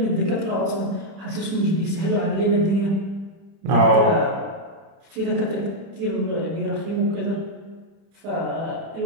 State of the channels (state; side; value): late; left; 30 ms